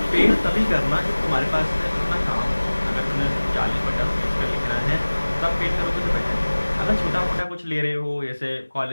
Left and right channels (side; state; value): both; inverted; correlation -1.00